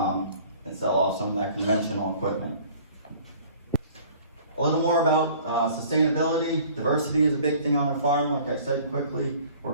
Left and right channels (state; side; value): inverted; both; correlation -0.51